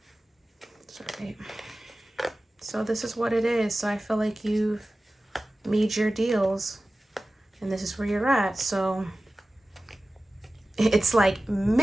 Sorry. So this is what it is. So I feel like you've made your deals. And this is where you're at. So it's like,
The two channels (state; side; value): normal; both; correlation 0.96